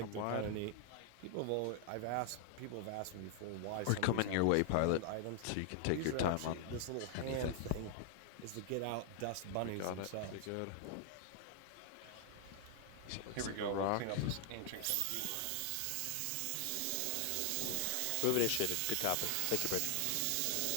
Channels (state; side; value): different; both; correlation 0.00